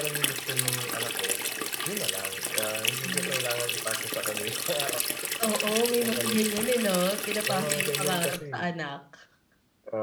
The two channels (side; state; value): both; identical; correlation 1.00